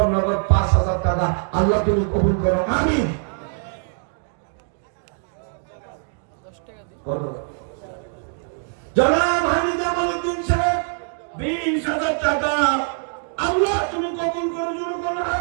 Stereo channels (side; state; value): left; silent; 57 dB below the other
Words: নগদ 5000 টাকা আল্লাহ তুমি কবুল করো। আমিন। 10 টাকা দিই জনাব হাজি জামালউদ্দিন সাহেব 20000 টাকা আল্লাহ তুমি কবুল করো। জোরে বলো